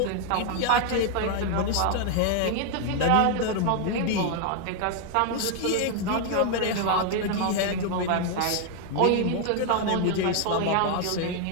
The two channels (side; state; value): both; different; correlation 0.00